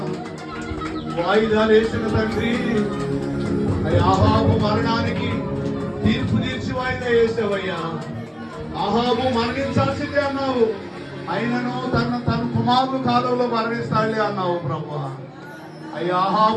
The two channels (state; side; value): identical; both; correlation 1.00